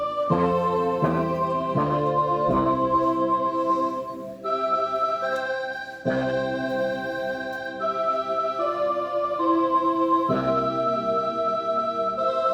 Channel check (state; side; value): identical; both; correlation 1.00